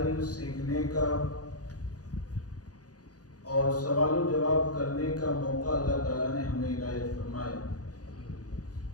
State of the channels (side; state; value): right; late; 0.68 ms